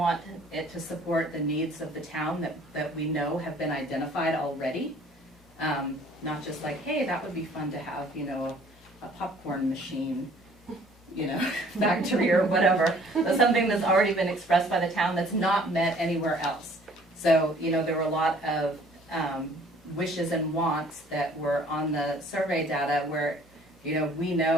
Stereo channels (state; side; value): normal; both; correlation 0.56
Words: it to support the needs of the town that we know have been identified already. Not just like, hey, that would be fun to have, you know, a popcorn machine, you know, factory or whatever, but something that's already been expressed by the town that's not met anywhere else. So, you know, there were a lot of wishes and wants that were on the survey data where, you know, we